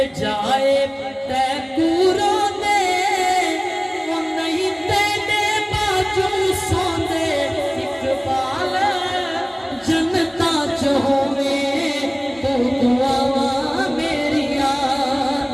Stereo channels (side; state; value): both; identical; correlation 1.00